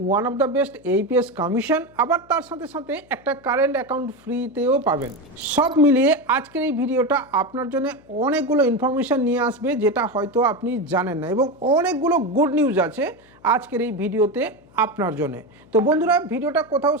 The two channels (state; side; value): noise; left; hum, 28 dB below the sound